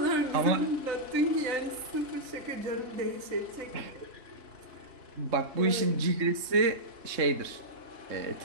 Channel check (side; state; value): left; late; 3.6 ms